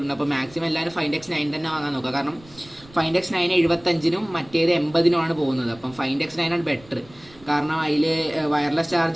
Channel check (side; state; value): right; noise; rumble, 24 dB below the sound